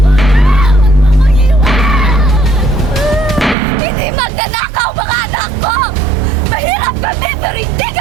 Hindi magnanakaw mga anak ko! Mahirap kami pero hindi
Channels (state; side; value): drops out; left; at 3.6 s